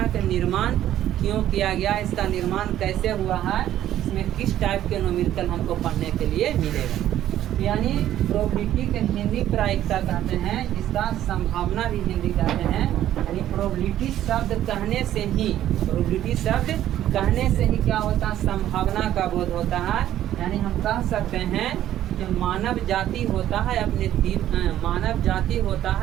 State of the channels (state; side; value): quieter; left; 12.2 dB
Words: का निर्माण क्यों किया गया, इसका निर्माण कैसे हुआ है, इसमें किस टाइप के न्यूमेरिकल हमको पढ़ने के लिए मिलेगा। यानी प्रोबेबिलिटी के हिंदी प्रायिकता कहते हैं, इसका संभावना भी हिंदी कहते हैं। यानी प्रोबेबिलिटी शब्द कहने से ही, प्रोबेबिलिटी शब्द कहने से ही क्या होता है, संभावना का बोध होता है। यानी हम कह सकते हैं कि मानव जाति होता है मानव जाति होता